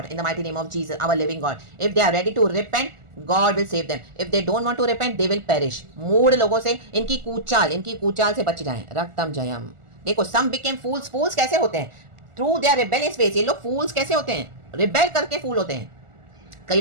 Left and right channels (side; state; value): left; late; 1.4 ms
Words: in the mighty name of Jesus, our living God. If they are ready to repent, God will save them. If they don't want to repent they will perish. मूढ़ लोगों से इनकी कूचाल से बच जाएं। रक्तम जयम। देखो सम became फूल्स। फूल्स कैसे होते हैं? Through their rebellious ways. ये लोग फूल्स कैसे होते हैं? रिबेल करके फूल होते हैं। कई